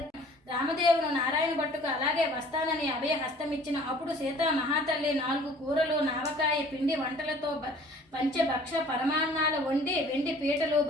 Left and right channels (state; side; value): normal; both; correlation 0.51